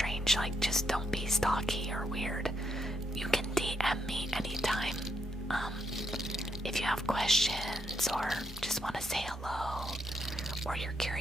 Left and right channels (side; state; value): both; normal; correlation 0.78